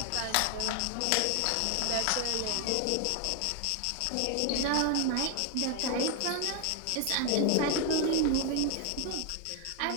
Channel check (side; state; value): both; different; correlation 0.01